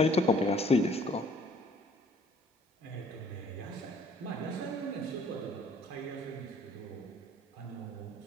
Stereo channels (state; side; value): normal; both; correlation 0.57